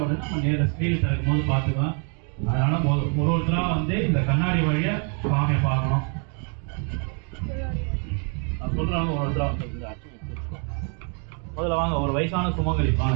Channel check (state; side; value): quieter; left; 39.4 dB